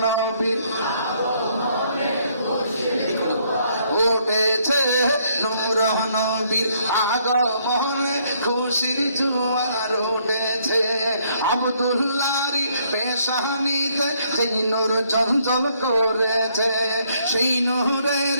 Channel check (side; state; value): both; inverted; correlation -0.69